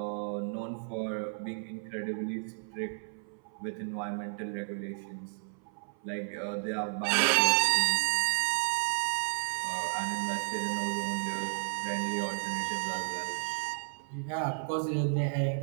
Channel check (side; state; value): left; silent; 56 dB below the other